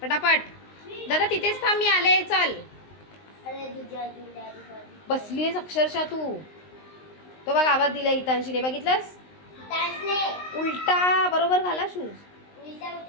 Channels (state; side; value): late; right; 19 ms